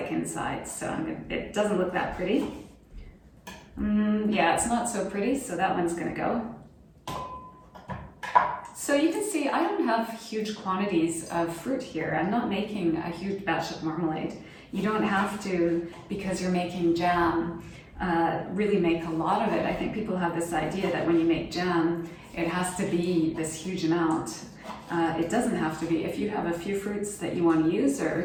inside, so it doesn't look that pretty. Yeah, it's not so pretty, so that one's going to go. So you can see I don't have huge quantities of fruit here. I'm not making a huge batch of marmalade. You don't have to, because you're making jam, really make a lot of it. I think people have this idea that when you make jam, it has to be this huge amount. It doesn't have to be. If you have a few fruits that you want to use,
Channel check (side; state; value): both; identical; correlation 1.00